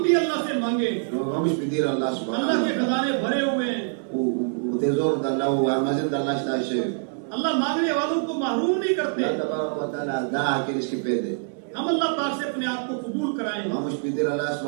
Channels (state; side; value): silent; left; 59 dB below the other